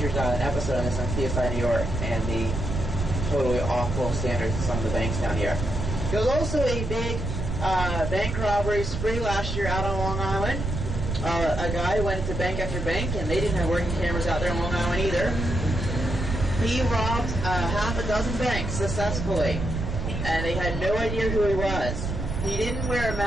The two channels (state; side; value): noise; right; rumble, 4 dB below the sound